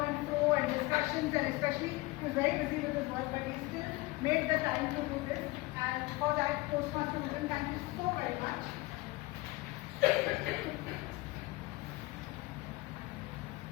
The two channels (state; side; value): quieter; right; 21.6 dB